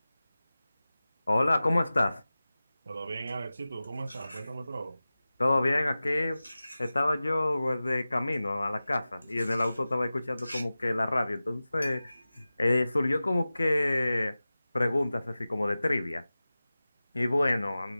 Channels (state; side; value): inverted; both; correlation -0.96